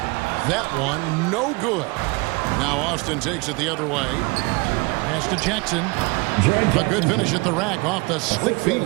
That one no good. Now Austin takes it the other way. Pass to Jackson. A good finish at the rack off the slick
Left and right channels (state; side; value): quieter; left; 26.1 dB